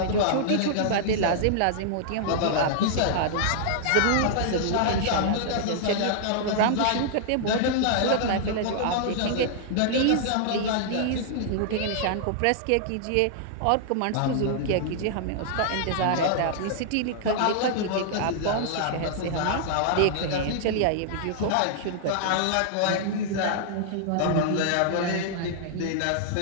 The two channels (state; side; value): different; both; correlation -0.01